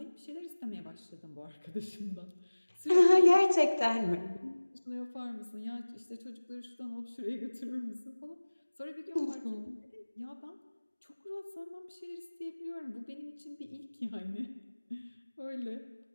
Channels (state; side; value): inverted; both; correlation -1.00